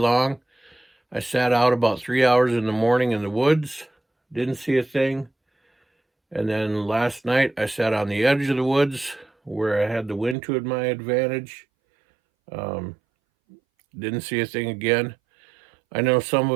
I sat out about 3 hours in the morning in the woods, didn't see a thing. And then last night I sat on the edge of the woods where I had the wind to my advantage. Didn't see a thing again. I know some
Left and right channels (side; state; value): left; drops out; at 10.4 s